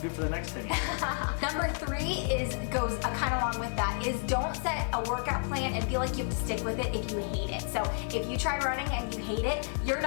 do it for the next 10 years. Number 3 goes kind of along with that, is don't set a workout plan and feel like you have to stick with it if you hate it. So if you try running and you hate it, you're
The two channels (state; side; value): silent; right; 57 dB below the other